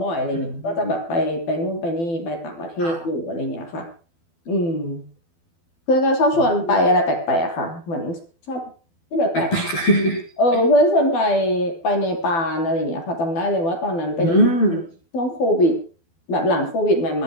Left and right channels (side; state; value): right; late; 12 ms